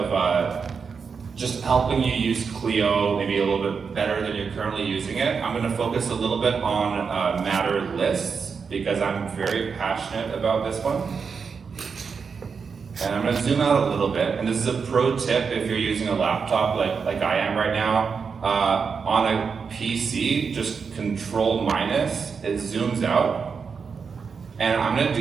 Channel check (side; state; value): left; quieter; 5.7 dB